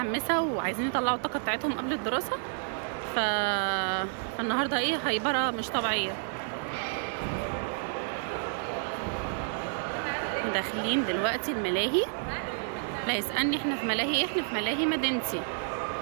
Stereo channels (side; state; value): left; silent; digital silence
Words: وعايزين يطلعوا الطاقه بتاعتهم قبل الدراسه. فالنهارده ايه، هيبره مش طبيعيه. داخلين دلوقتي الملاهي. لا يسألني احنا في ملاهي ايه، احنا في ملاهي مدينتي.